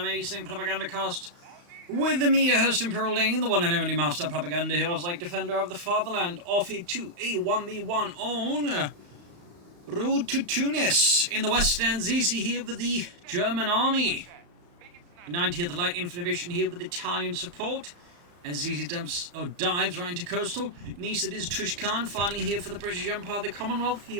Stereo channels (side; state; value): left; late; 35 ms